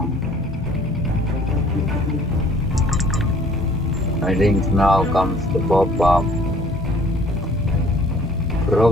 I think now comes the pop-up.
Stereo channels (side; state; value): both; normal; correlation 0.56